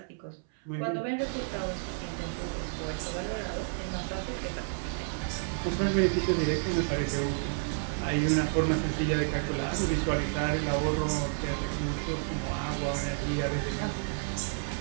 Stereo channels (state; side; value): silent; left; 57 dB below the other